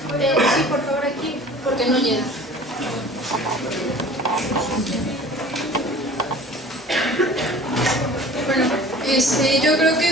por favor, aquí, porque no llega. Bueno, yo creo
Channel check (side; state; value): both; normal; correlation 0.45